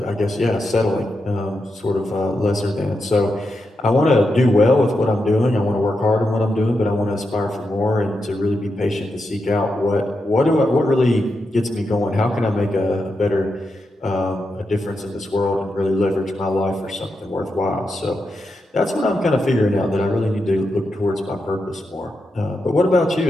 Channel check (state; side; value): normal; both; correlation 0.86